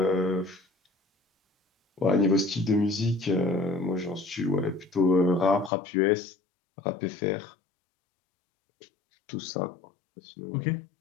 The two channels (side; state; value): right; drops out; at 5.7 s